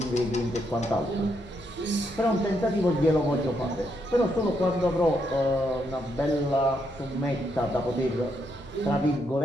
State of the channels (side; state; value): both; normal; correlation 0.78